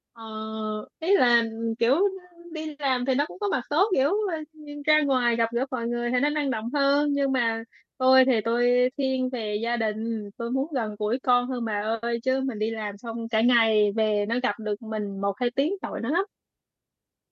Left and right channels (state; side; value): identical; both; correlation 1.00